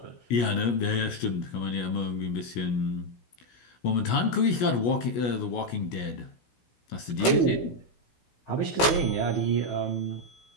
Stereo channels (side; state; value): right; late; 16 ms